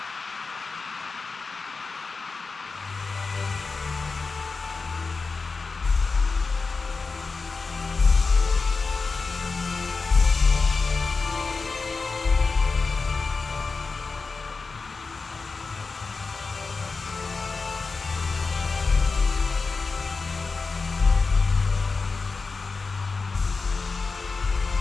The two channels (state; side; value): quieter; right; 4.3 dB